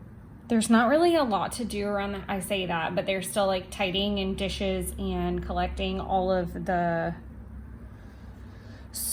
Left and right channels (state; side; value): identical; both; correlation 1.00